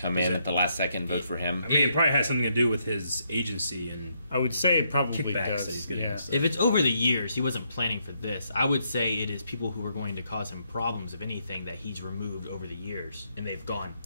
in at the last second and vote for him. I mean, it probably has something to do with his agency and I would say it probably kickbacks does. that he's getting. Yeah. So. If it's over the years, he wasn't planning for this. I would say it is people who are going to cause him problems, if anything, that he's removed over the years and they've gone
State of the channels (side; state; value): both; inverted; correlation -0.76